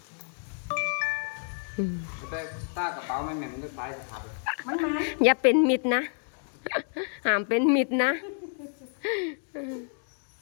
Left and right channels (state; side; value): silent; right; 59 dB below the other